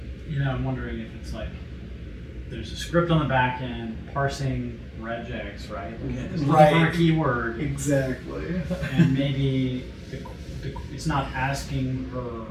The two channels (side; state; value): both; identical; correlation 1.00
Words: you know, I'm wondering if it's like there's a script on the back end parsing regex, right? It's looking for a Right. keyword, Exactly. and maybe it's not asking her